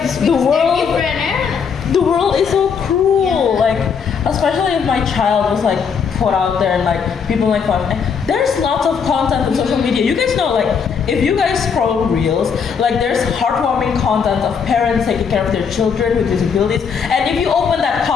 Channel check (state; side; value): quieter; right; 6.4 dB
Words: the world is so cruel. Like especially if my child was like put out there and like people make fun. There's lots of content on social media. You guys know, like if you guys scroll reels, like there's heartwarming content of parents taking care of their children with disabilities, and if you open that